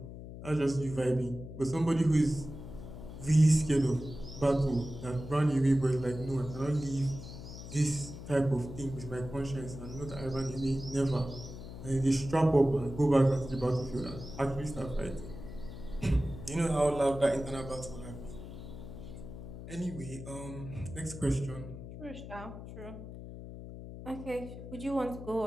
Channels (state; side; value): noise; left; hum, 11 dB below the sound